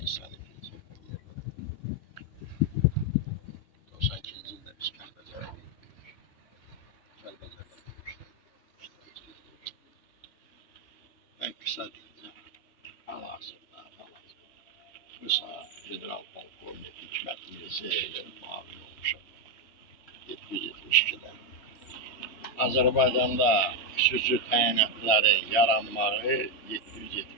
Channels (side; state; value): right; late; 3.1 ms